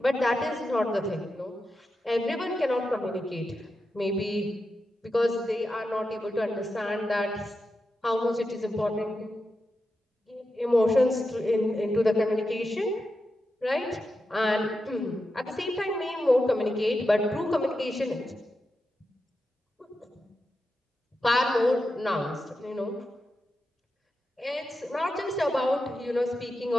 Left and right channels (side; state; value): both; normal; correlation 0.89